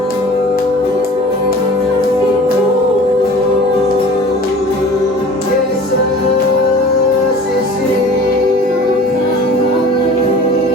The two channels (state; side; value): normal; both; correlation 0.43